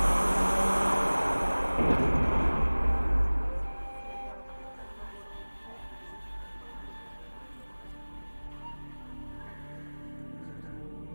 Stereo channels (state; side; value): inverted; both; correlation -1.00